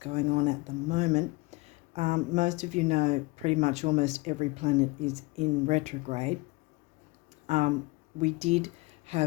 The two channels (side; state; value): right; quieter; 23.8 dB